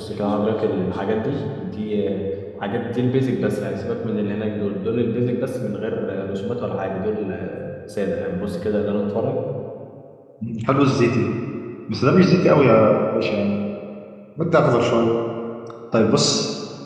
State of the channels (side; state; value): both; identical; correlation 1.00